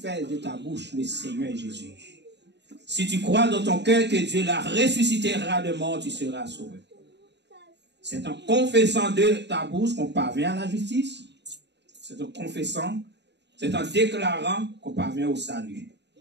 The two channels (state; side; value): late; left; 0.50 ms